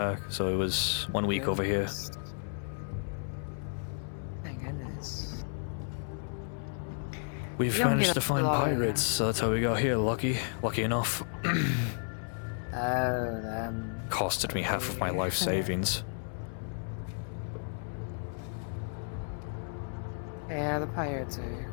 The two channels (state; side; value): silent; right; 56 dB below the other